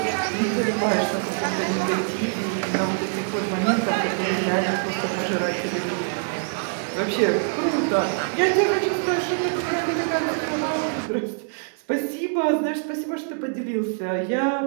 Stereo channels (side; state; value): left; silent; digital silence